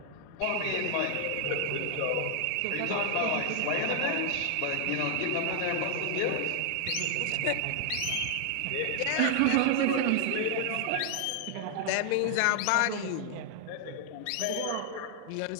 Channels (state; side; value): different; both; correlation 0.00